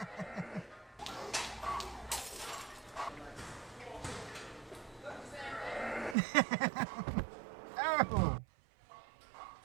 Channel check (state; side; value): drops out; left; at 6.2 s